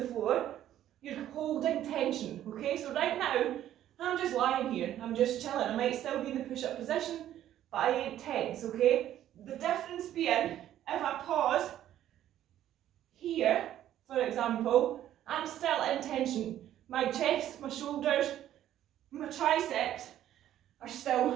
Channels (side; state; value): left; quieter; 11.9 dB